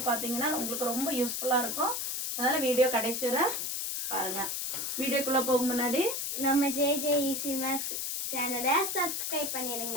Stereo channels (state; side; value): noise; left; hiss, 2 dB below the sound